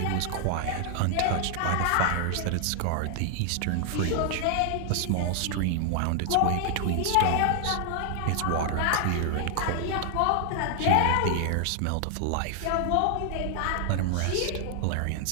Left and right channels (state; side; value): different; both; correlation 0.00